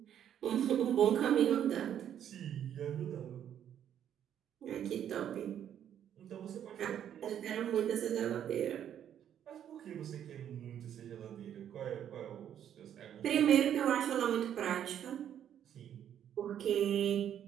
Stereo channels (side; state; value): left; quieter; 9.9 dB